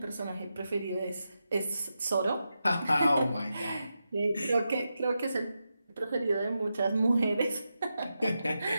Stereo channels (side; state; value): both; inverted; correlation -0.88